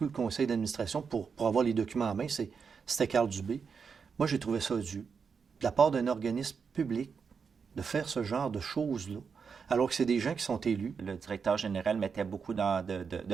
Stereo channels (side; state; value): left; quieter; 5.9 dB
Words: du conseil d'administration pour avoir les documents en main, c'était Carl Dubé. Moi, j'ai trouvé ça dû, de la part d'un organisme public, de faire ce genre de choses-là, alors que c'est des gens qui sont élus. Le directeur général mettait beaucoup